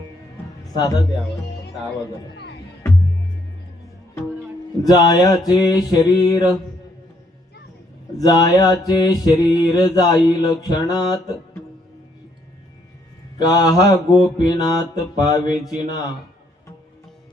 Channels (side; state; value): both; normal; correlation 0.70